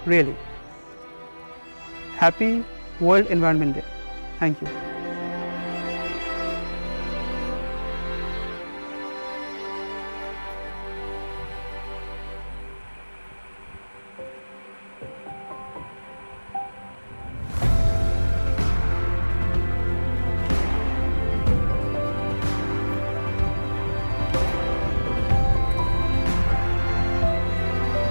really. Happy World Environment Day. Thank you.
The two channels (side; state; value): both; inverted; correlation -1.00